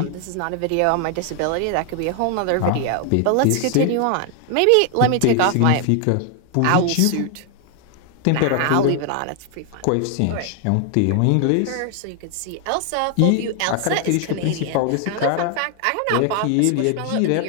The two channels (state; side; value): different; both; correlation 0.00